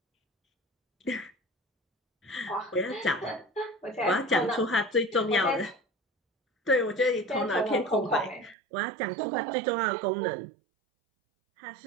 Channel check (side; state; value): left; drops out; at 8.6 s